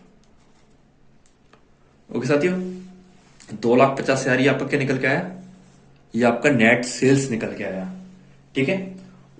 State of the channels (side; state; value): both; identical; correlation 1.00